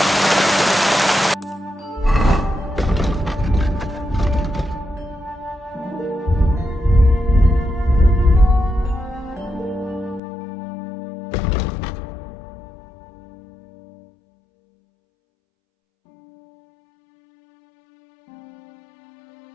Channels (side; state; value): right; drops out; at 10.2 s